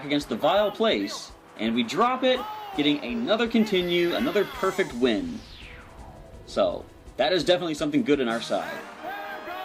against the Vile Place, and we drop it, getting another continue, another perfect win. So, that is definitely something good on our side.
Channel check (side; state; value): both; identical; correlation 1.00